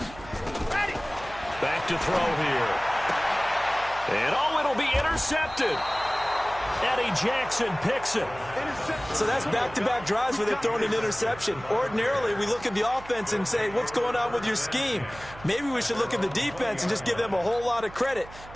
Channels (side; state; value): right; noise; hum, 17 dB below the sound